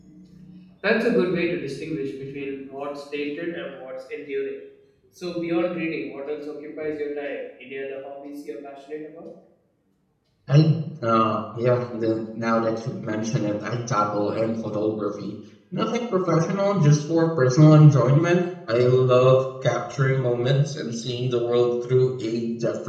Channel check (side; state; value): both; identical; correlation 1.00